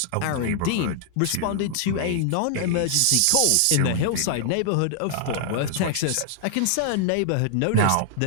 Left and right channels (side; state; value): both; different; correlation -0.01